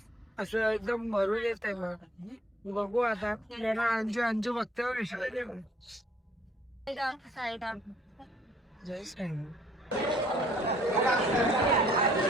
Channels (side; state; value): both; normal; correlation 0.62